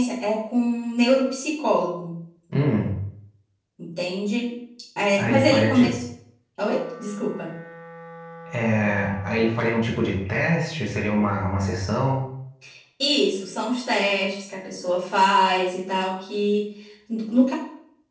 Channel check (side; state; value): both; identical; correlation 1.00